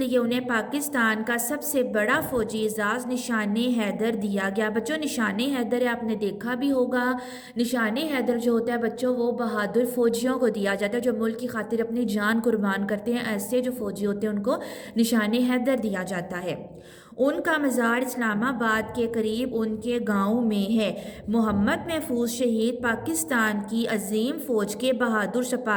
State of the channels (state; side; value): identical; both; correlation 1.00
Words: انہیں پاکستان کا سب سے بڑا فوجی اعزاز نشان حیدر دیا گیا۔ بچوں نشان حیدر ہے، آپ نے دیکھا بھی ہوگا، نشان حیدر جو ہوتا ہے بچوں، وہ بہادر فوجیوں کو دیا جاتا ہے جو ملک کی خاطر اپنی جان قربان کرتے ہیں، ایسے جو فوجی ہوتے ہیں ان کو نشان حیدر دیا جاتا ہے۔ ان کا مزار اسلام آباد کے قریب ان کے گاؤں میں ہے۔ محمد محفوظ شہید پاکستان کی عظیم فوج کے بہادر